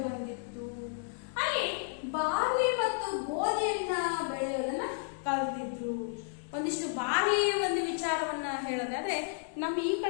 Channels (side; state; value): right; silent; digital silence